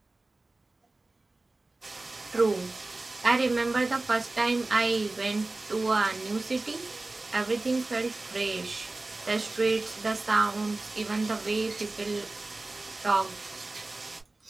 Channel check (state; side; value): quieter; left; 3.1 dB